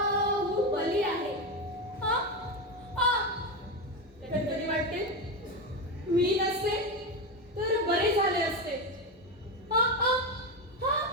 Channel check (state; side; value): normal; both; correlation 0.14